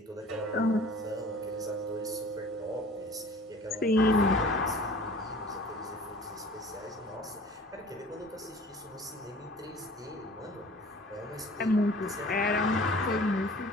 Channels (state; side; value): normal; both; correlation 0.47